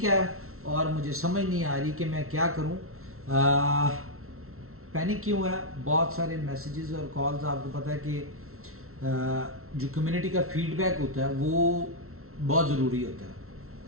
है और मुझे समझ नहीं आ रही कि मैं क्या करूं। पैनिक क्यों है? बहुत सारे मैसेजेस और कॉल्स, आपको पता है कि जो कम्युनिटी का फीडबैक होता है वो बहुत ज़रूरी होता है,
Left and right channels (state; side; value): late; left; 0.63 ms